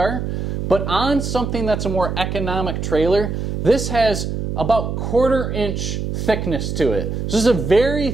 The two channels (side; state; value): right; noise; hum, 3 dB below the sound